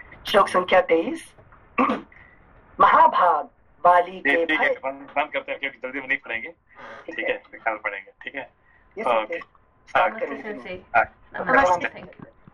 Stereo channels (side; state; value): both; identical; correlation 1.00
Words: श्लोक संख्या 23। महाभाग वाली के ठीक है, बंद करते हैं क्योंकि जल्दी में नहीं पढ़ेंगे, ठीक है? कल पढ़ेंगे, ठीक है? ओके,